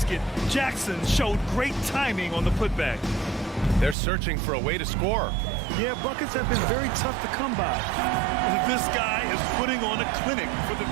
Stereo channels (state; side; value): drops out; left; at 4.0 s